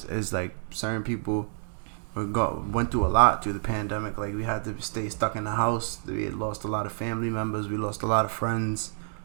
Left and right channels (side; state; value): left; silent; digital silence